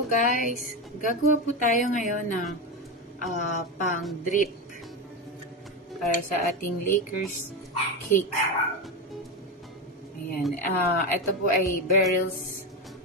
guys. Gagawa po tayo ngayon ng pang drip para sa ating Lakers cake. Ayan. Ito po ay Beryl's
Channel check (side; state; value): both; normal; correlation 0.16